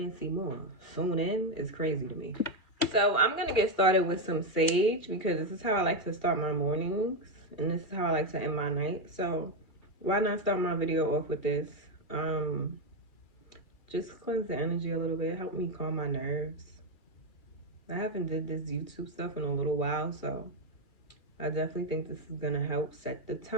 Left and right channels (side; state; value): right; late; 2.3 ms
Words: see more. Tune in is crazy to me. So I'm gonna get started with some sage because this is how I like to start my mornings and this is how I like to end my night. So why not start my video off with this? Just cleanse the energy a little bit, help me calm my nerves. I haven't did this YouTube stuff in a little while, so I definitely think this is gonna help set the